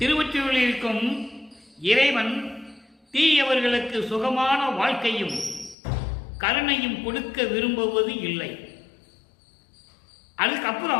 திருவொற்றியூரில் இருக்கும் இறைவன் தீயவர்களுக்கு சுகமான வாழ்க்கையும் கருணையும் கொடுக்க விரும்புவது இல்லை.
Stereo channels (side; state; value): right; drops out; at 5.8 s